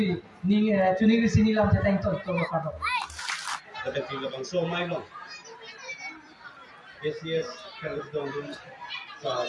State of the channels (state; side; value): identical; both; correlation 1.00